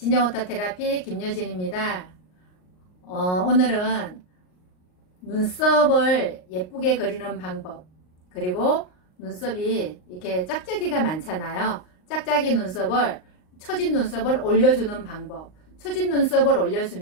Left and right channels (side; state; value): right; late; 38 ms